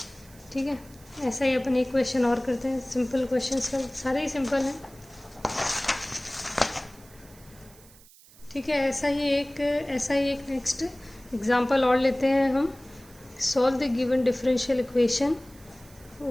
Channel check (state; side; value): noise; right; hiss, 24 dB below the sound